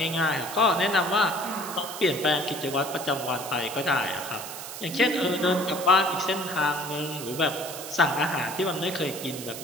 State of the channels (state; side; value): noise; right; hiss, 10 dB below the sound